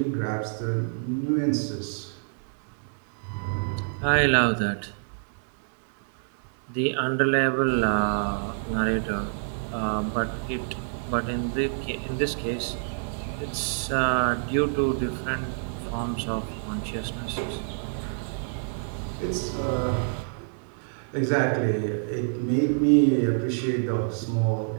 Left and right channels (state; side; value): silent; left; digital silence